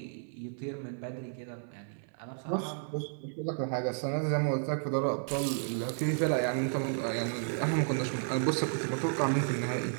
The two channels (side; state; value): left; silent; 56 dB below the other